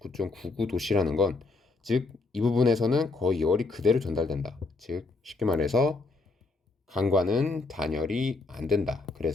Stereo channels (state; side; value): quieter; right; 3.6 dB